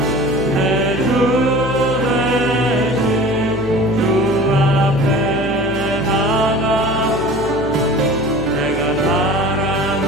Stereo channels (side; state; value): left; noise; hum, 12 dB below the sound